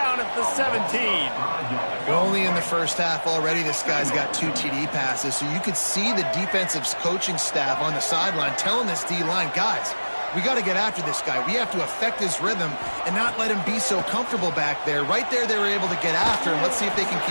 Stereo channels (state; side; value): inverted; both; correlation -1.00